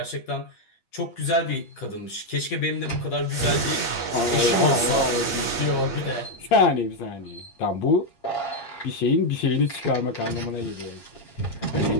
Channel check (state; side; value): late; right; 8.5 ms